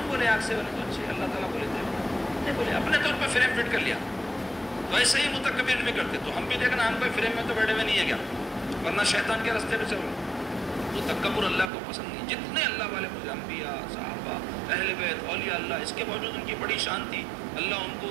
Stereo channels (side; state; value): left; drops out; at 11.7 s